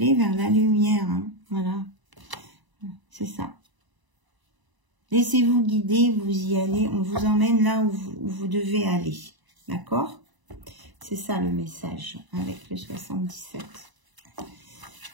vers la lumière. Hein. Voilà. C'est ça. Laissez-vous guider, vous y allez, on vous emmène là où vous devez aller. D'accord? C'est ça le message avec le 77.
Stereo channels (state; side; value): late; left; 1.0 ms